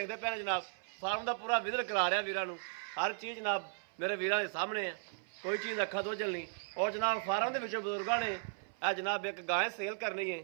ਪਏ ਨੇ ਜਨਾਬ ਫਾਰਮ ਦਾ ਪੂਰਾ ਵਿਜ਼ਿਟ ਕਰਾ ਰਿਹਾ ਵੀਰਾਂ ਨੂੰ। ਹਰ ਚੀਜ਼ ਜਨਾਬ ਮੇਰੇ ਵੀਰਾਂ ਦੇ ਸਾਹਮਣੇ ਆ, ਕੋਈ ਚੀਜ਼ ਅੱਖਾਂ ਤੋਂ ਝੱਲ ਨਹੀਂ। ਔਰ ਜਨਾਬ ਫਾਰਮ ਦੇ ਵਿੱਚੋਂ ਬਜ਼ੁਰਗਾਂ ਨੇ ਆ ਜਨਾਬ ਇੱਕ ਗਾਂ ਸੇਲ ਕਰਨੀ ਹੈ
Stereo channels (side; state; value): left; silent; 54 dB below the other